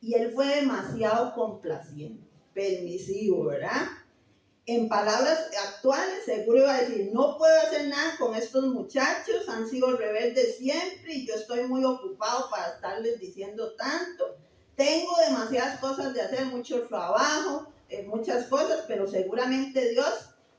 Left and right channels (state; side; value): identical; both; correlation 1.00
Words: él fue demasiado complaciente, permisivo, ¿verdad? En palabras actuales, seguro iba a decir, no puedo hacer nada con estos muchachos, han sido rebeldes siempre y yo estoy muy ocupado para estarles diciendo tanto. Tengo demasiadas cosas de hacer, mucho trabajo, muchas cosas, pero seguramente Dios